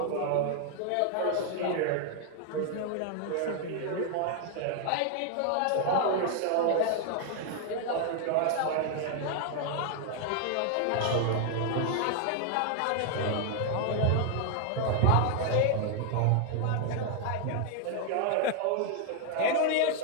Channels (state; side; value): different; both; correlation 0.00